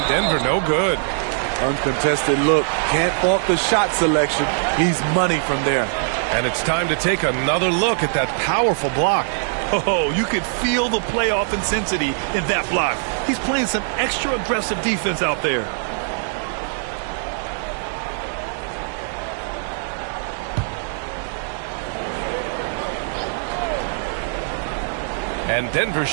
Denver no good. Uncontested look. Can't fault the shot selection. He's money from there. And it's time to take another look at that powerful block. Oh, you could feel the playoff intensity in that block. He's playing some extra aggressive defense out there. And Denver's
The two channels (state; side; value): silent; left; 64 dB below the other